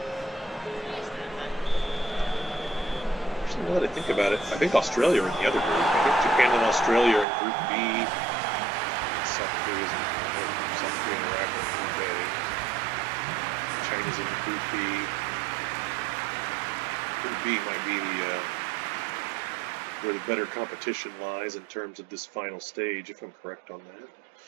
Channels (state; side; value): drops out; left; at 7.2 s